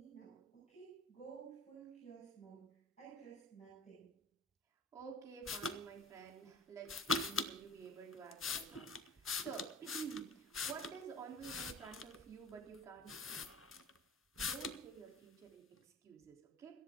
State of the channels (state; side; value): normal; both; correlation 0.42